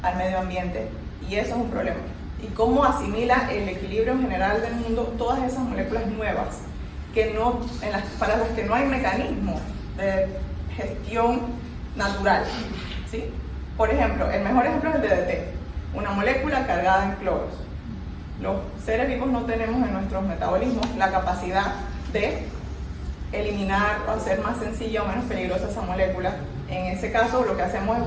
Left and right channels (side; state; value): both; identical; correlation 1.00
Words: al medio ambiente, y eso es un problema. Y cómo asimila el equilibrio general del mundo todas esas moléculas nuevas que para las que no hay mecanismo de gestión natural, ¿sí? Por ejemplo, el mejor ejemplo es el DDT, una molécula cargada en cloros. Los seres vivos no tenemos en nuestros metabolismos la capacidad de eliminar o hacer más sencilla o menos peligrosa esa molécula. En ese caso, lo que hacemos es